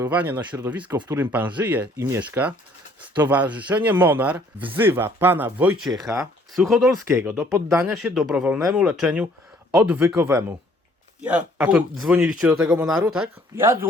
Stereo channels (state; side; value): normal; both; correlation 0.60